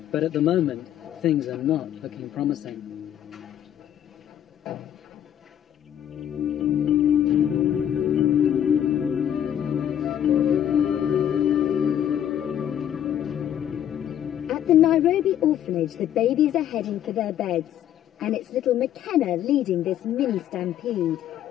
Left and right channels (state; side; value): quieter; right; 10.4 dB